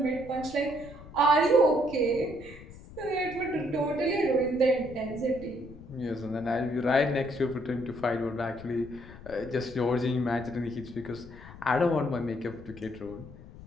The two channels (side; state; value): left; noise; rumble, 17 dB below the sound